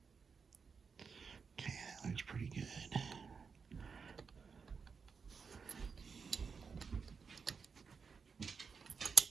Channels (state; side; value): quieter; left; 5.6 dB